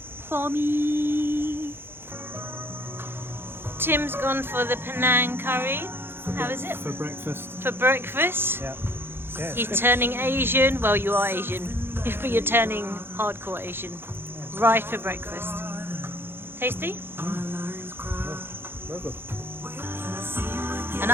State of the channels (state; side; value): late; left; 0.11 ms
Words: for me. Tim's gone for the Penang curry. How is it? For breakfast. For breakfast? Yeah. Yeah. He's turning Asian. Well, you are Asian, but you're turning hardcore Asian. Right for breakfast. Tasty? Very good. And